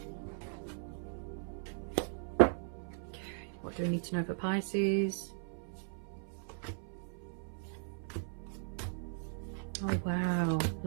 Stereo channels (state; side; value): silent; left; 53 dB below the other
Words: Okay, what do we need to know for Pisces? Oh wow, a